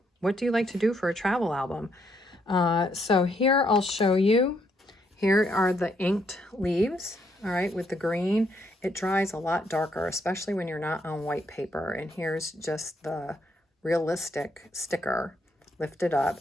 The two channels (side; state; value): both; normal; correlation 0.73